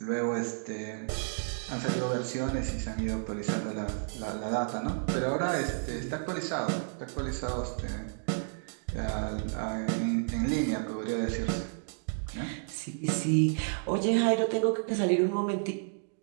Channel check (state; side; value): silent; left; digital silence